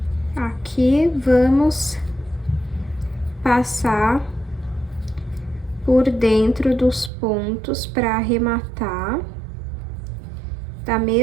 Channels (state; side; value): drops out; left; at 7.1 s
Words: Aqui, vamos passar por dentro dos pontos para arrematar, da